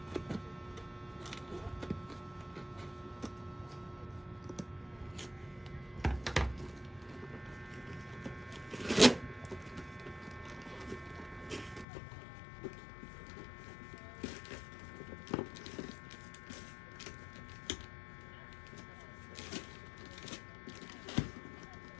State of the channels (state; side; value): drops out; right; at 11.9 s